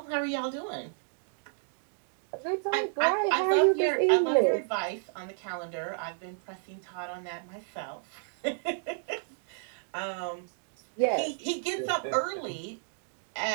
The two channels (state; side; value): silent; left; digital silence